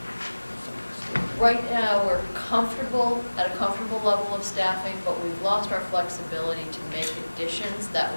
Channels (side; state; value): both; inverted; correlation -1.00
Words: right now we're at a comfortable level of staffing, but we've lost our flexibility to make additions that